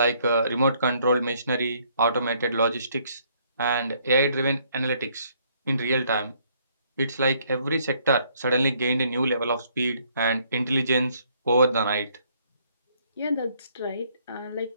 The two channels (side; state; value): both; inverted; correlation -0.66